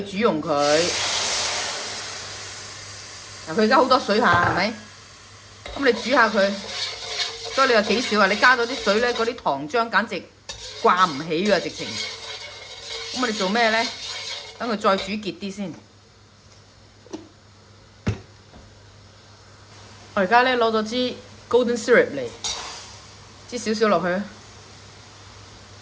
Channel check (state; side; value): identical; both; correlation 1.00